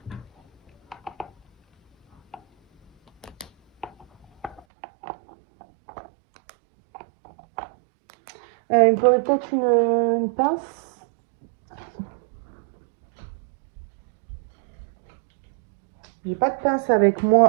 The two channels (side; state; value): left; drops out; at 4.7 s